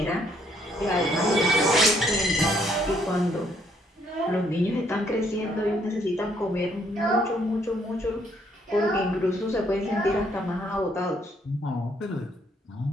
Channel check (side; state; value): both; normal; correlation 0.68